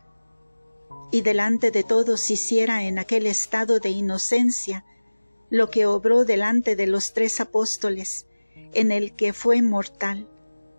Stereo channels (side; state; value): both; inverted; correlation -1.00